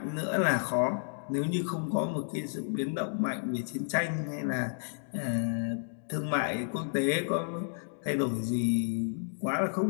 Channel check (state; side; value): silent; right; digital silence